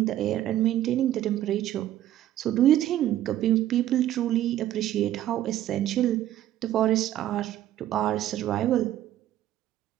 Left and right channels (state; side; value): quieter; left; 12.8 dB